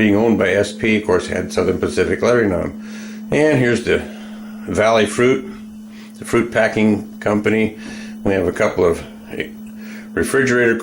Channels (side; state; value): both; identical; correlation 1.00